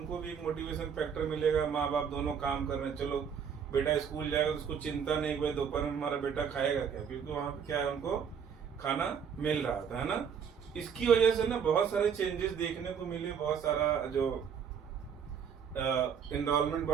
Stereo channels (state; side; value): quieter; left; 7.3 dB